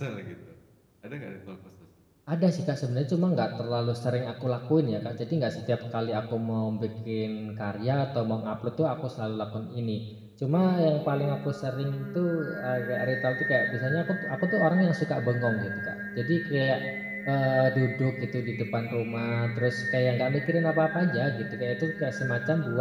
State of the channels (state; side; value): identical; both; correlation 1.00